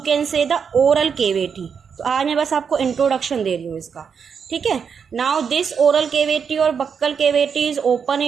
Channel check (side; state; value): left; quieter; 6.6 dB